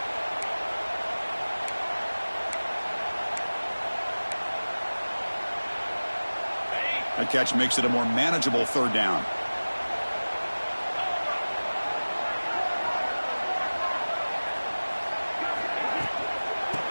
That catch makes it a more manageable third down.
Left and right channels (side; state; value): both; inverted; correlation -1.00